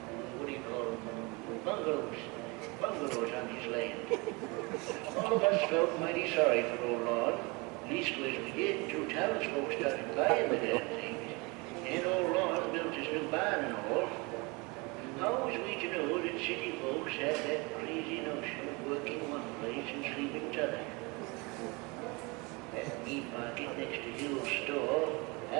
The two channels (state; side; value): quieter; left; 27.2 dB